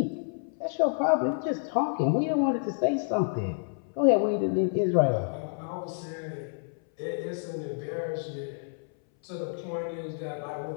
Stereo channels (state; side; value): silent; right; 58 dB below the other